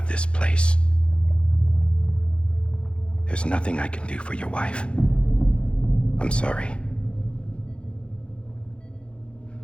this place. There's nothing I can do for your wife. I'm sorry.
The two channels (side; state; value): right; late; 0.057 ms